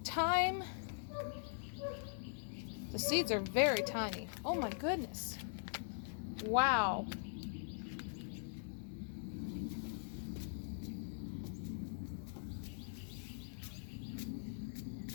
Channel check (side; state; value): right; silent; digital silence